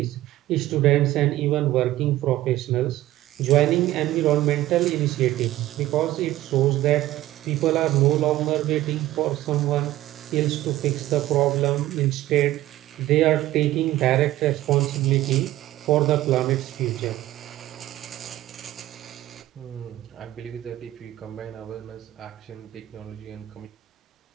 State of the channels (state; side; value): quieter; left; 15.2 dB